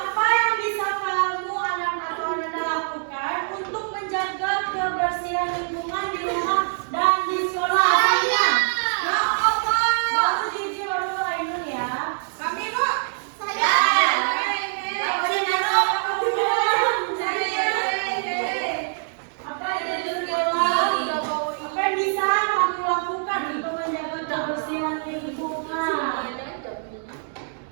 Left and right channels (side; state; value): left; silent; digital silence